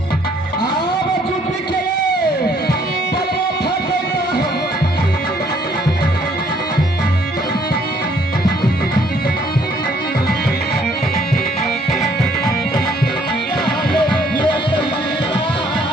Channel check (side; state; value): both; normal; correlation 0.64